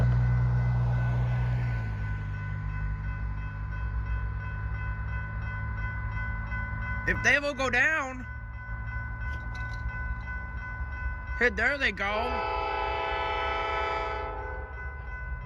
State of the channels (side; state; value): both; identical; correlation 1.00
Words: If they will go down, hey, there they go.